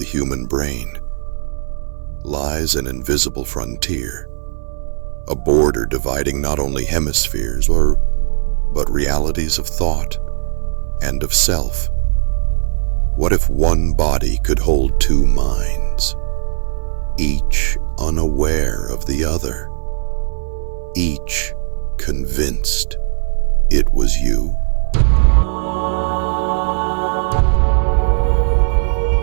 human brain lies an invisible frontier, a border dividing not only hemispheres, but realities of thought and of self. What if one body could hold two minds, each unaware of the other, each convinced it was you?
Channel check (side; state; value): left; silent; 63 dB below the other